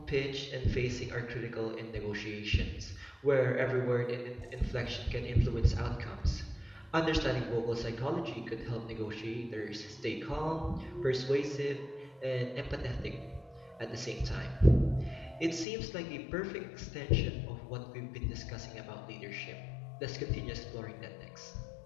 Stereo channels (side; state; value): right; drops out; at 15.7 s